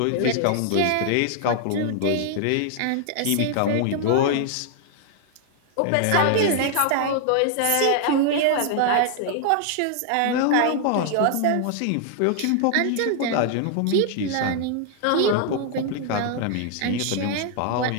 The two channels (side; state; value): both; different; correlation 0.00